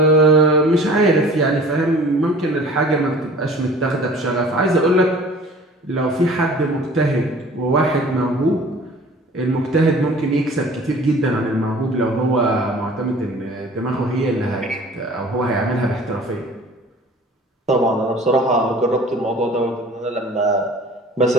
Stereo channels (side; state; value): both; normal; correlation 0.46